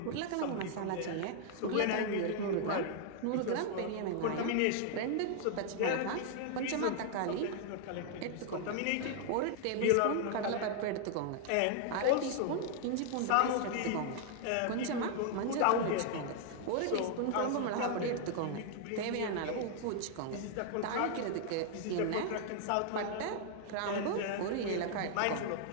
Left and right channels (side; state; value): both; different; correlation 0.00